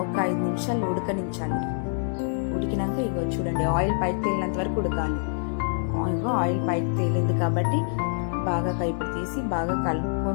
ఒక 5 నిమిషాలు ఉడకనించాలి. ఉడికినాక ఇగో చూడండి ఆయిల్ పైకి తేలినంత వరకు ఉడకాలి. ఆయిల్ పైకి తేలింది కాబట్టి బాగా కైపు తీసి బాగా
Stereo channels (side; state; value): right; silent; 61 dB below the other